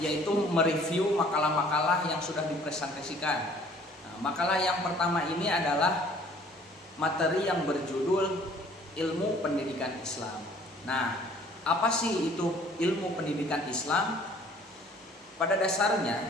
mereview makalah-makalah yang sudah dipresentasikan. Makalah yang pertama ini adalah materi yang berjudul ilmu pendidikan Islam. Nah, apa sih itu ilmu pendidikan Islam? Pada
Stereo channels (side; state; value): both; normal; correlation 0.55